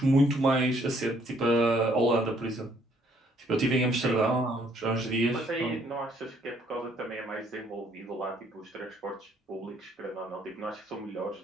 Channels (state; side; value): normal; both; correlation 0.66